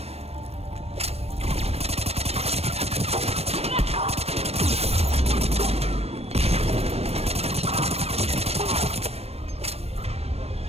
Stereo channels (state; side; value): late; left; 0.30 ms